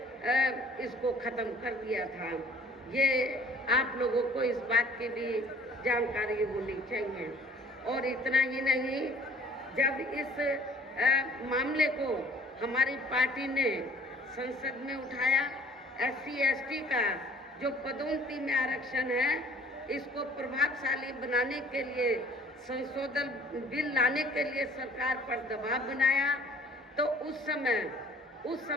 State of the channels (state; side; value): normal; both; correlation 0.53